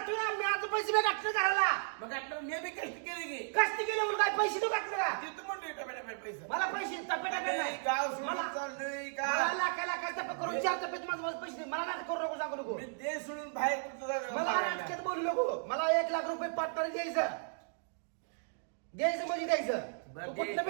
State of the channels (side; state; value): left; silent; digital silence